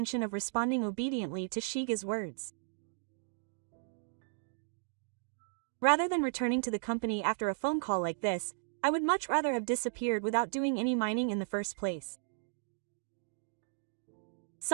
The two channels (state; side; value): silent; left; digital silence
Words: of responding obediently to Shige's words. Rather than returning to the company after a phone call like this, I would much rather have disappeared without doing any mining in the first place.